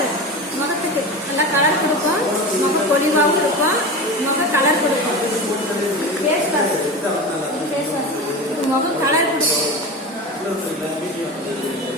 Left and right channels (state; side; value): normal; both; correlation 0.27